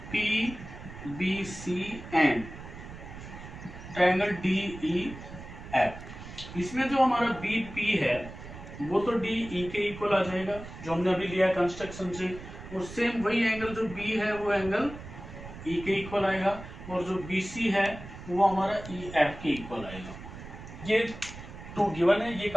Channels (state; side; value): noise; right; rumble, 13 dB below the sound